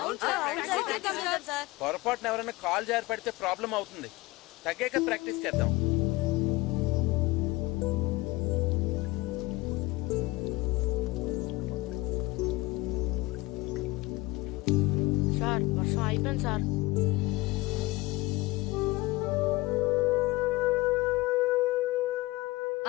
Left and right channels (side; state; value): right; quieter; 20.9 dB